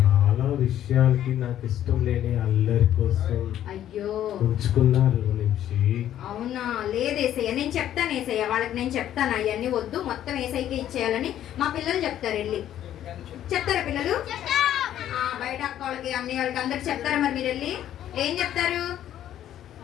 విషయాలకి నాకు ఇష్టం లేని అల్లరి కోసం అయ్యో ఉంచుకున్నారు నుంచి. అవునా? లేదేసయ్య, నేను చెప్తాను ఏసయ్య వాళ్ళకి, నేను చెప్తాను అవన్నీ వద్దు, మొత్తం ఏసైకే ఇచ్చేయాలని మా పిల్లలు చెప్తారు. వెళ్ళి చెప్తారా పిల్లలు? ఆ, బయట అక్క వాళ్ళకి అన్ని వాళ్ళకి అందరికి చెప్తారా? మరి మీరు వెళ్ళి ఏం చెప్తారు?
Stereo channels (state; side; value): quieter; right; 11.5 dB